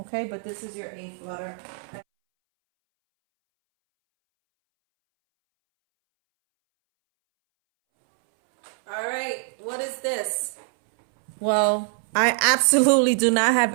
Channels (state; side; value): silent; left; 63 dB below the other